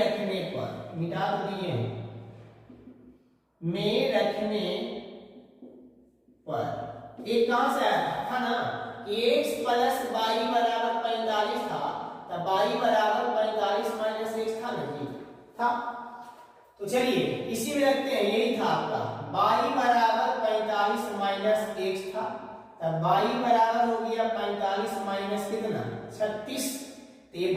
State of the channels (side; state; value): both; identical; correlation 1.00